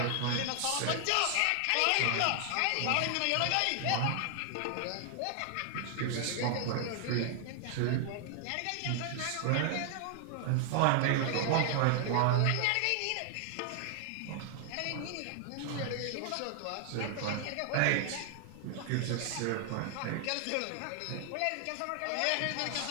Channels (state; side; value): different; both; correlation 0.00